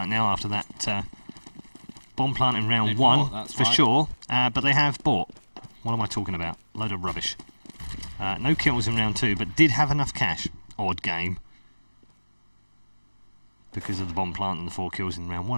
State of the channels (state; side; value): inverted; both; correlation -1.00